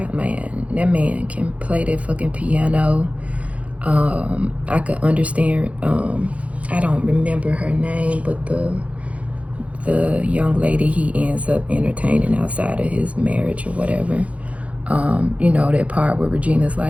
Man, that man can play that fucking piano. I could understand, I don't remember her name, but the young lady he ends up entertaining outside of his marriage or whatever. You know, that part where Regina's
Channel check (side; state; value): left; late; 0.065 ms